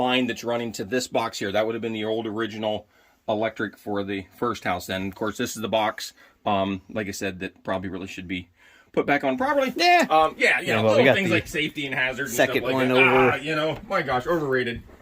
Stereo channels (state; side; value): identical; both; correlation 1.00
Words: that's running to this box here. That would have been the old original electric for the first house. Then, of course, this is the box, like I said, that probably really should be put back on properly. Yeah. Little things like safety and hazards. Second and stuff like one that. over. My gosh, overrated.